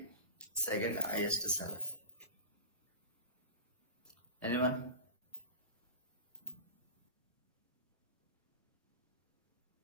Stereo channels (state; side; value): inverted; both; correlation -0.34